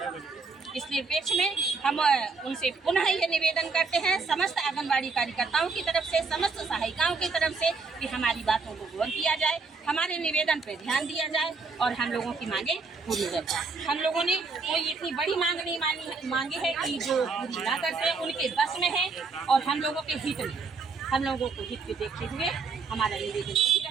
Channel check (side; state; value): left; quieter; 4.4 dB